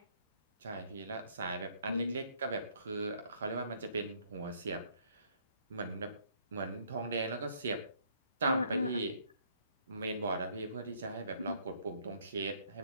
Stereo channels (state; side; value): inverted; both; correlation -0.65